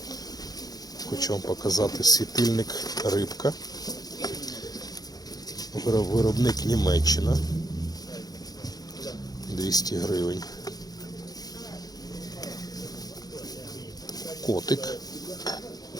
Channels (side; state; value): right; late; 0.19 ms